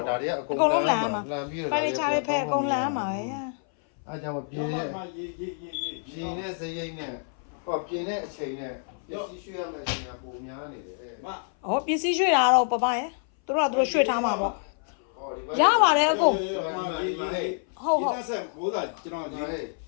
့ဒါတွေကအ အကုန်လုံးလှန်ရမှာ လှန်ပြီးတော့ ဖိုင်နေချာတွေဖဲအကုန်လှန်ရမှာပဲ အဲ့ကြောင့်ပြင်းတဲ့ပြင်းတဲ့စရိတ်နဲ့ဟောပြင်းတဲ့အချိန်နဲ့ပစ္စည်းရွှေ့ရမယ့်အချိန်ကပုံများနေတယ် မ ။ဩပစ္စည်းရွှေ့တာတော့ပပရဲ့။သူတို့ကသူတို့ရွှေ့ထားမှာပေါ့။ရပါတယ်အကုန် ဒီတက်ဆက်ဘိုးသားကျွန်တော်ဒီ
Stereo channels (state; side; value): silent; right; 58 dB below the other